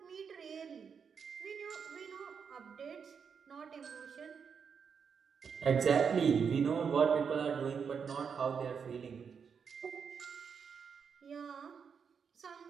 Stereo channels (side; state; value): left; quieter; 6.5 dB